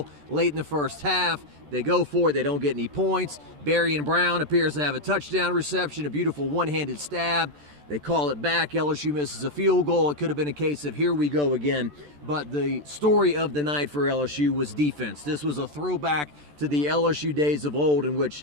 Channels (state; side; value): late; left; 14 ms